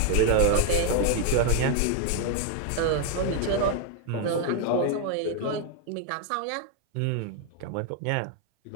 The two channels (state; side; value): different; both; correlation 0.00